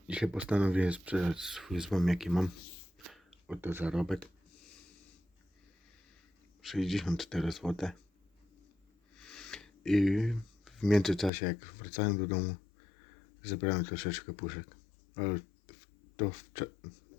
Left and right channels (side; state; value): right; drops out; at 11.3 s